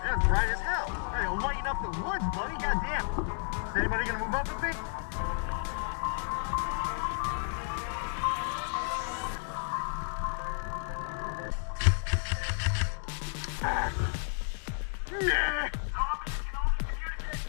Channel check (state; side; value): silent; right; 56 dB below the other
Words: bright as hell. Hey, I'll lighten up the woods, buddy. Goddamn. Is anybody gonna move up with me? Nah.